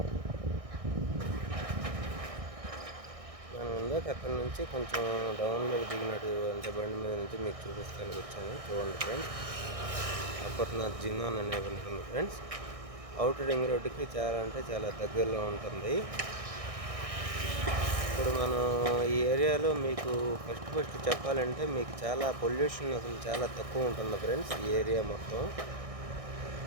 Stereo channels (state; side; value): late; left; 1.6 ms